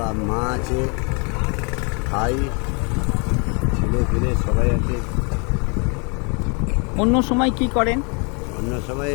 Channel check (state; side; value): quieter; right; 34.4 dB